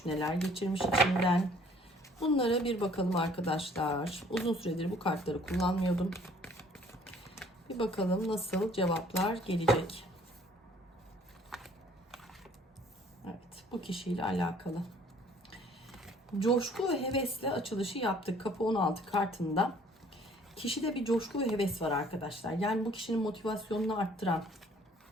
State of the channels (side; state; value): both; normal; correlation 0.57